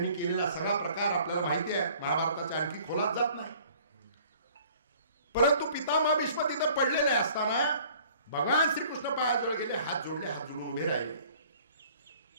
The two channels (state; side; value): inverted; both; correlation -0.53